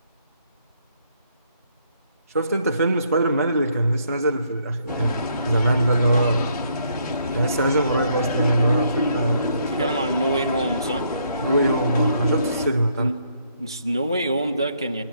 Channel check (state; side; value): inverted; both; correlation -0.70